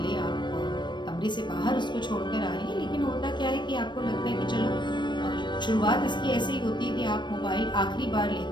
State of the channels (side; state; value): right; late; 0.22 ms